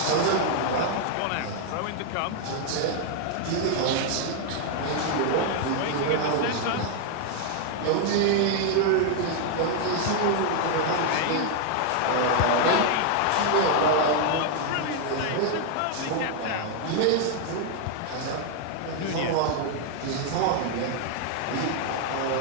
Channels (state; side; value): different; both; correlation 0.00